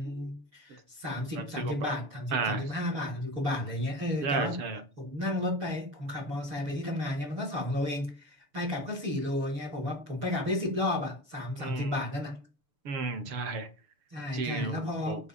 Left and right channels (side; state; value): left; late; 6.8 ms